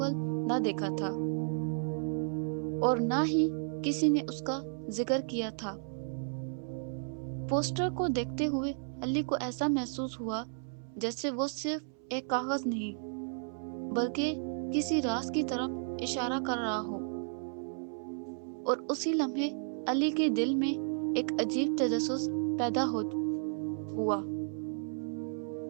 نہ دیکھا تھا اور نہ ہی کسی نے اس کا ذکر کیا تھا۔ پوسٹر کو دیکھتے ہوئے علی کو ایسا محسوس ہوا جیسے وہ صرف ایک کاغذ نہیں بلکہ کسی راز کی طرف اشارہ کر رہا ہو، اور اسی لمحے علی کے دل میں ایک عجیب تجسس پیدا ہوا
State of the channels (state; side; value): silent; left; 56 dB below the other